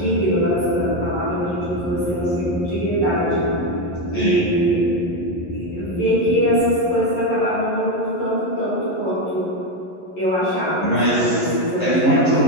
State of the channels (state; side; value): late; right; 11 ms